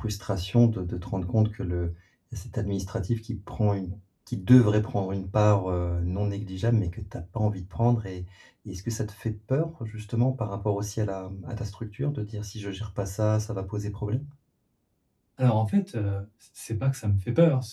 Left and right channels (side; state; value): both; identical; correlation 1.00